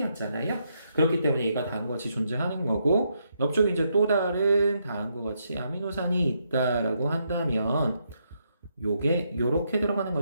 그렇기 때문에 얘가 다음과 같이 존재하는 거고 옆쪽에 이제 또 다른 다음과 같이 아미노산이 있다라고 한다면 요게 요렇게 들어가는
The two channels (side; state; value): both; inverted; correlation -0.78